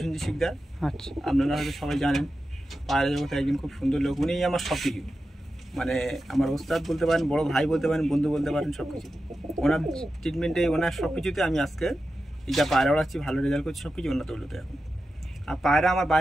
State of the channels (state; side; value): normal; both; correlation 0.91